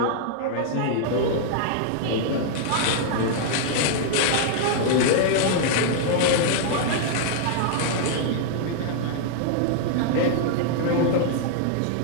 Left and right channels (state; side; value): different; both; correlation -0.01